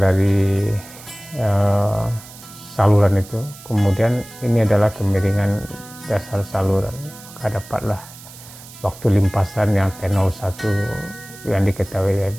saluran itu. Kemudian ini adalah kemiringan dasar saluran. Maka dapatlah waktu limpasan yang T01 yang diketahui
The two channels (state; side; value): noise; right; hiss, 18 dB below the sound